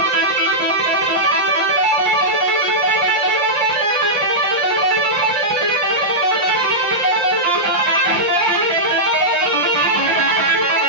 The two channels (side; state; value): left; late; 5.7 ms